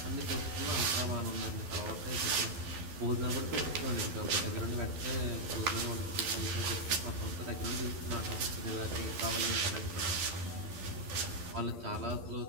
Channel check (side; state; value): left; late; 12 ms